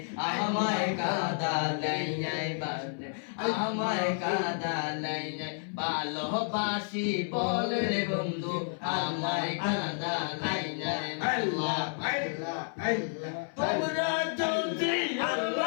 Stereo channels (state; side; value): silent; right; 57 dB below the other